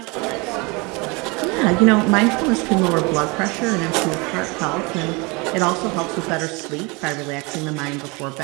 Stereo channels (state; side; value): quieter; left; 27.6 dB